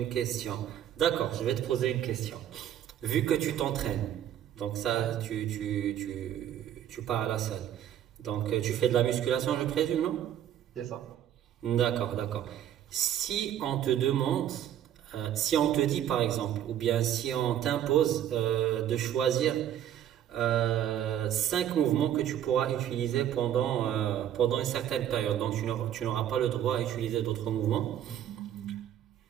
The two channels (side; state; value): left; quieter; 10.9 dB